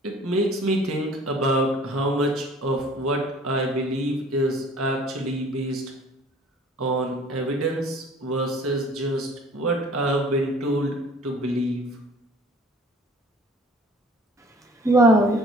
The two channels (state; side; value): normal; both; correlation 0.51